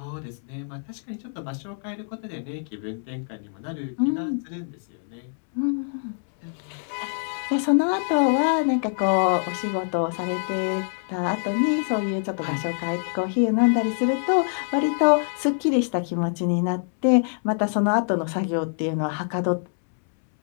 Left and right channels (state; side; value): silent; right; 62 dB below the other